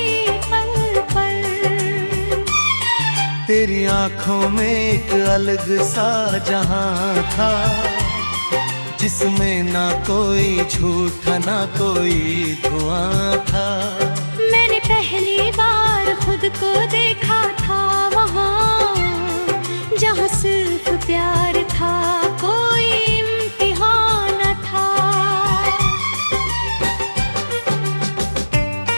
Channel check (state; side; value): inverted; both; correlation -1.00